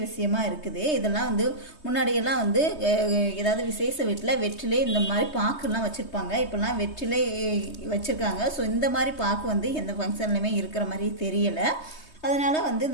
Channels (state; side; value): late; right; 3.2 ms